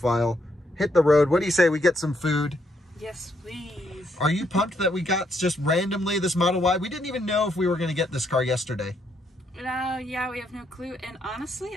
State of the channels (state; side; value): normal; both; correlation 0.74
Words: Hit the road. What do you say we get some food? Yes, please. Are you pumped that we got just randomly this Model Y? We didn't even know if we were going to get this car yesterday. Yeah, we have no clue. And